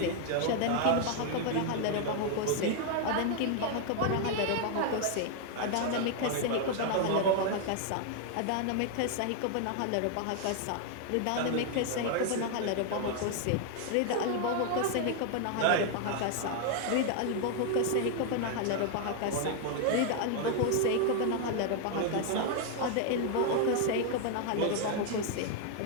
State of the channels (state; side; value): different; both; correlation 0.00